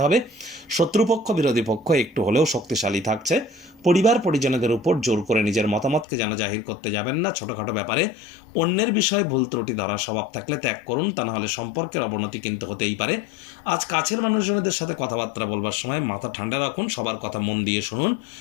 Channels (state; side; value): drops out; right; at 6.1 s